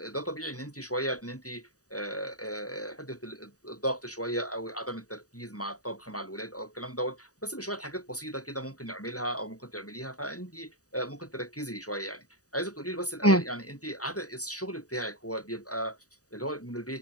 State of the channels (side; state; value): right; late; 0.66 ms